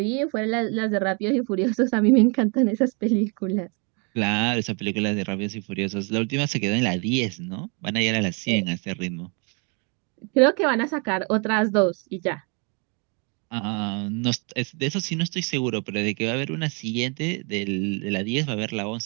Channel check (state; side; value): quieter; left; 34.6 dB